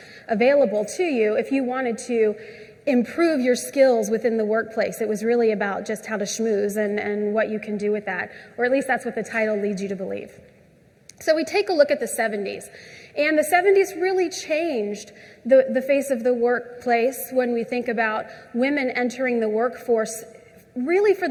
available to you if you wanted to improve your skills within the workplace. It was really about just how to schmooze and what you can do with that, or at least that's what the title leads you to believe. So we take a look at the 70s. And the 70s really changed the face of the workplace when we think about women entering the workforce really for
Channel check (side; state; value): both; identical; correlation 1.00